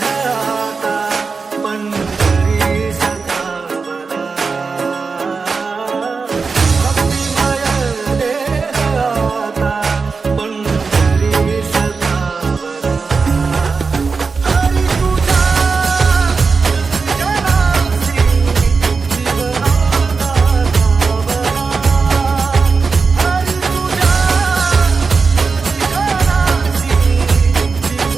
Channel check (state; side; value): quieter; left; 4.7 dB